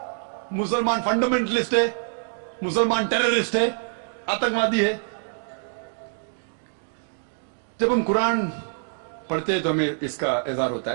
मुसलमान फंडामेंटलिस्ट है, मुसलमान टेररिस्ट है, आतंकवादी है। जब हम कुरान पढ़ते हैं तो हमें इसका इज़हार होता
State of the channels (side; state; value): left; silent; 61 dB below the other